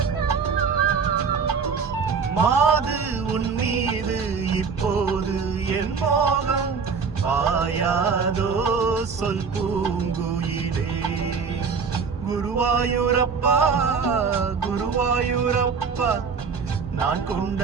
மாது உன் மீது இப்போது என் மோகம் பாயாதோ சொல் பூங்குயிலே. குருவாயூரப்பா குருவாயூரப்பா, நான்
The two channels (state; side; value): quieter; left; 5.5 dB